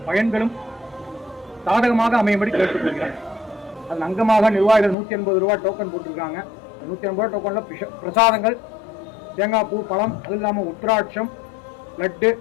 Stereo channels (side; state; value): right; drops out; at 5.0 s